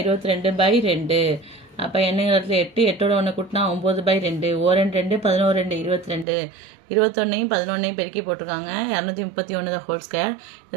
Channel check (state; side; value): drops out; left; at 6.2 s